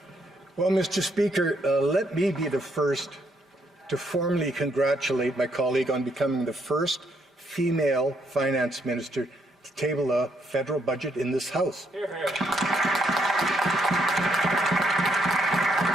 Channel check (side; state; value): both; normal; correlation 0.74